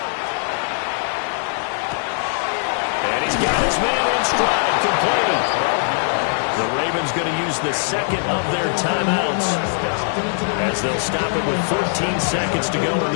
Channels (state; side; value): silent; right; 65 dB below the other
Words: And he's got his man in stride, completed. The Ravens going to use the 2nd of their timeouts as they'll stop it with 14 seconds to go in